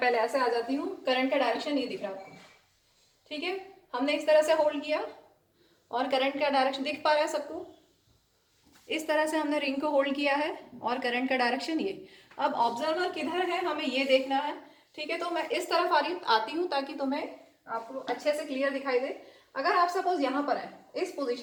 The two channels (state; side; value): identical; both; correlation 1.00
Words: ऐसे आ जाती हूँ, करंट का डायरेक्शन ये दिख रहा है आपको। ठीक है, हमने इस तरह से होल्ड किया और करंट का डायरेक्शन दिख पा रहा है सबको, इस तरह से हमने रिंग को होल्ड किया है और करंट का डायरेक्शन ये। अब ऑब्जर्वर किधर है हमें ये देखना है। ठीक है, तो मैं इस तरफ आती हूँ ताकि तुम्हें आपको अच्छे से क्लियर दिखाई दे। अगर आप सपोज यहाँ पर है इस